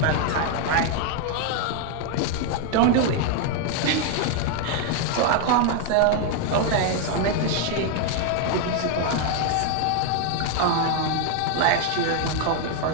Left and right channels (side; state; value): both; different; correlation 0.00